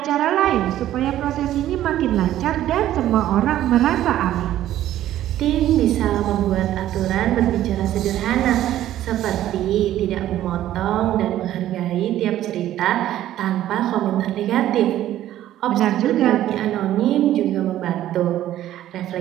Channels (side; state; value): left; quieter; 12.9 dB